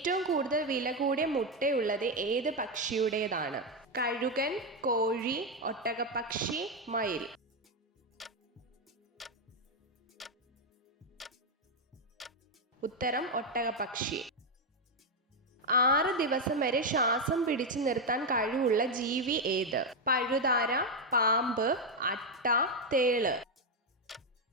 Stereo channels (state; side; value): normal; both; correlation 0.04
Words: കൂടുതൽ വില കൂടിയ മുട്ടയുള്ളത് ഏത് പക്ഷിയുടേതാണ്? കഴുകൻ, കോഴി, ഒട്ടകപ്പക്ഷി, മയിൽ. ഉത്തരം ഒട്ടകപ്പക്ഷി. 6 ദിവസം വരെ ശ്വാസം പിടിച്ചു നിർത്താൻ കഴിവുള്ള ജീവി ഏത്? പഴുതാര, പാമ്പ്, അട്ട, തേള്.